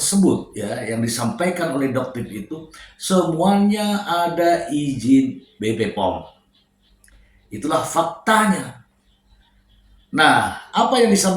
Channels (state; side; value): identical; both; correlation 1.00